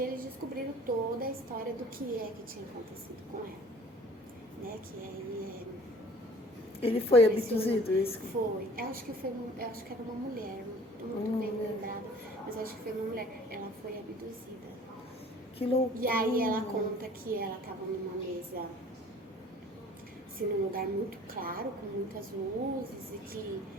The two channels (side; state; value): both; normal; correlation 0.49